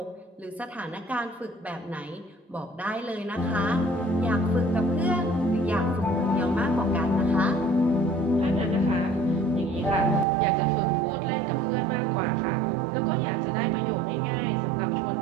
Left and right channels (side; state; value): left; drops out; at 10.2 s